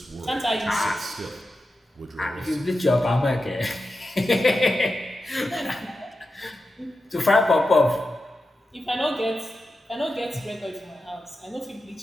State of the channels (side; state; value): both; normal; correlation 0.91